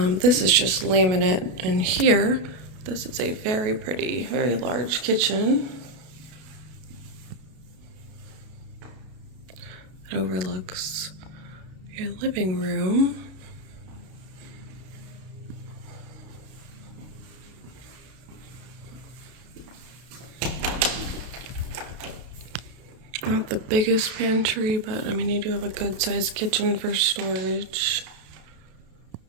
is just laminate, and here, this is a very pretty, very large kitchen. It overlooks your living room. Not the biggest pantry, but I mean, you do have a good sized kitchen for storage.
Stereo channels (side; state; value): left; late; 32 ms